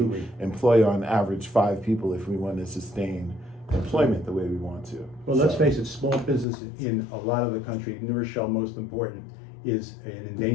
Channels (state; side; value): drops out; right; at 6.5 s